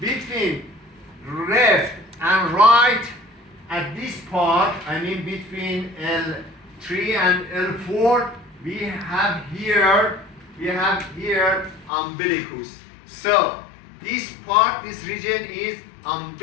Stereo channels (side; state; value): right; drops out; at 11.9 s